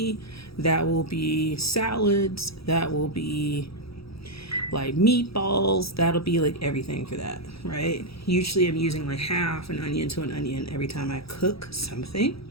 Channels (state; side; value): late; right; 0.77 ms